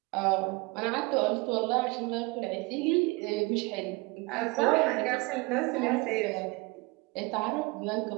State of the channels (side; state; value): left; quieter; 25.8 dB